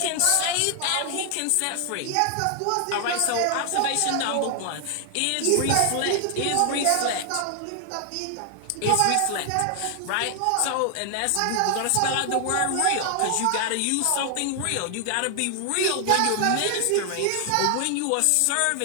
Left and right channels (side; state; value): both; different; correlation 0.00